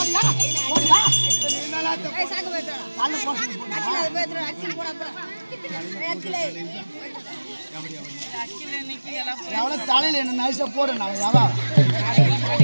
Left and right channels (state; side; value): inverted; both; correlation -1.00